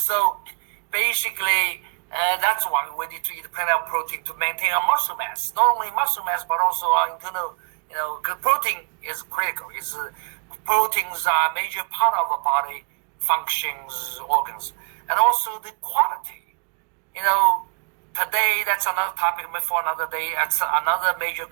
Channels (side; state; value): left; quieter; 38.8 dB